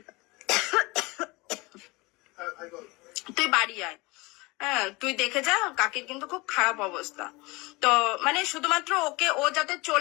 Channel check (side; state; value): right; quieter; 24.1 dB